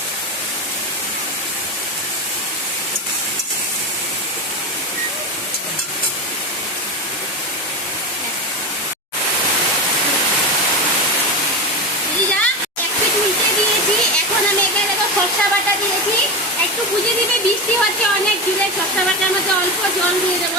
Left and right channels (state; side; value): normal; both; correlation 0.20